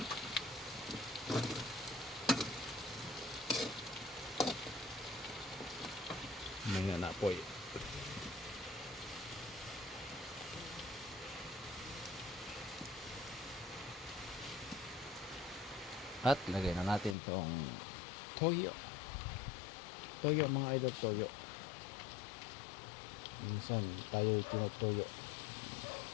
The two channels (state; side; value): drops out; right; at 17.2 s